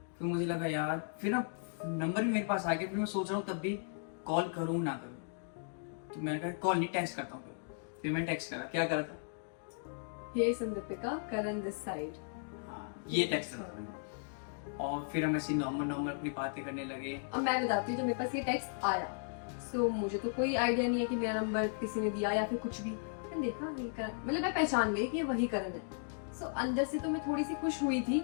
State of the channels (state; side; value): silent; right; digital silence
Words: फिर मुझे लगा यार, फिर ना नंबर भी मेरे पास आ गया। फिर मैं सोच रहा हूँ तब भी कॉल करूँ ना करूँ, तो मैंने कहा कॉल नहीं, टेक्स्ट करता हूँ। फिर मैंने टेक्स्ट करा। क्या करा था? हे संदीपिका, करण दिस साइड। ये टेक्स्ट करा था। और फिर हम ऐसे नॉर्मल अपनी बातें करने लगे। अब मैं बताती हूँ, जब मेरे पास ये टेक्स्ट आया, सो मुझे तो कोई आइडिया नहीं है कि मेरा नंबर किसी ने दिया या फिर कुछ भी। मैंने देखा ये करण, मतलब मैं पहचान गई कि ये वही करण है। सो अंदर से तो मैं थोड़ी सी खुश हुई थी